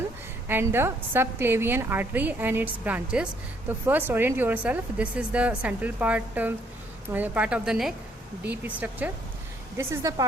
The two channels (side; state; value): both; normal; correlation 0.68